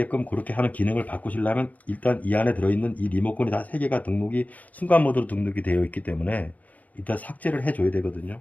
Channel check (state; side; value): late; right; 0.073 ms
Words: 그렇게 하는 기능을 바꾸시려면 일단 이 안에 들어있는 이 리모컨이 다 3개가 등록이 순간 모드로 등록이 되어 있기 때문에 일단 삭제를 해줘야